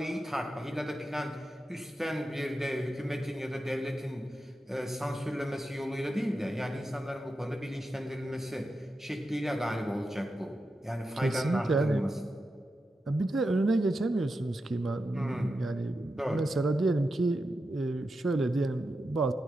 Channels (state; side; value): normal; both; correlation 0.89